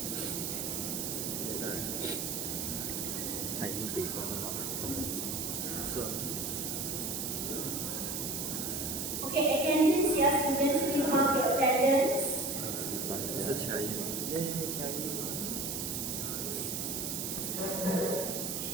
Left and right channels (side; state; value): right; noise; hiss, 2 dB below the sound